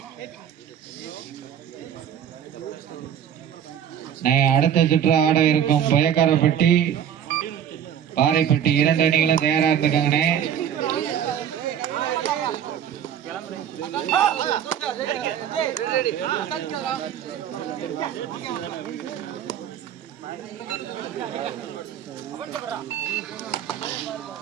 அடுத்த சுற்று ஆட இருக்கும் பயக்காரப்பட்டி பாறைப்பட்டி 2 அணிகளும் தயாரா இருந்துக்காங்கண்ணே.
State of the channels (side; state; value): left; quieter; 9.3 dB